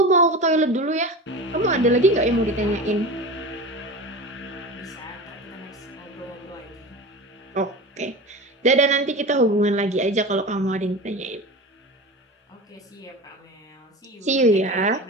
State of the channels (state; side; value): normal; both; correlation 0.30